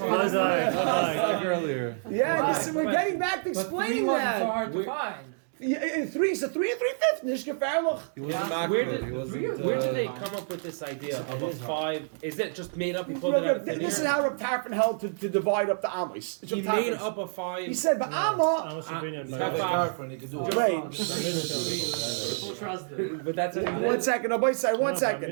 like earlier. Yeah, we're getting back to explaining that. hard to find. Three is a 3 and 3/5. Nicht gefährlich. He wasn't Where makbid. did, He wasn't. where did they come up with this idea of a 5? Is it just made up? He pulled it out of thin This is air? how Reb Tarfon held to divide up the Amos. He made up a 5. He said, but Amma. Amos opinion, He's but got the girlfriend, he can do it. Wait. Full trust him. But that's it. One second. No, wait, one no, second.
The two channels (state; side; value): silent; left; digital silence